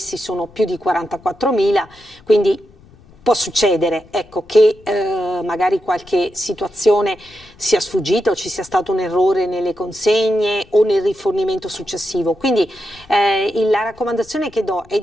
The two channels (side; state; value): left; noise; rumble, 26 dB below the sound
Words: sono più di 44.000, quindi può succedere, ecco, che magari qualche situazione sia sfuggita o ci sia stato un errore nelle consegne o nel rifornimento successivo. Quindi la raccomandazione che do è